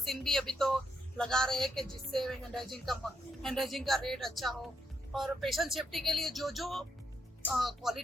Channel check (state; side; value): normal; both; correlation 0.79